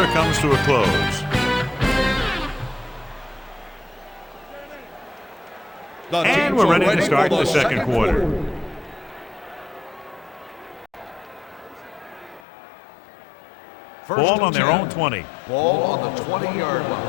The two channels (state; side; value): drops out; right; at 12.5 s